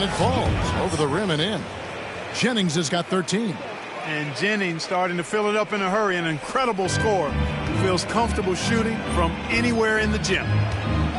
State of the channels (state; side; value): identical; both; correlation 1.00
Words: it falls over the rim and in. Jennings has got 13. And Jennings starting to fill it up in a hurry. An incredible score. Feels comfortable shooting from anywhere in the gym.